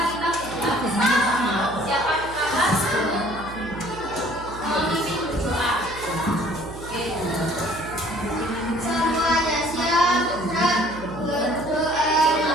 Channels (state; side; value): noise; right; hum, 15 dB below the sound